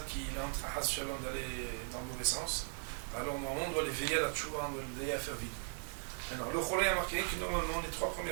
qui est en train d'aller dans le mauvais sens, alors normalement on doit les veiller à la tchouva, on doit les veiller à faire vide. Maintenant, le cholé a marqué que normalement les 3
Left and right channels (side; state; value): left; silent; 52 dB below the other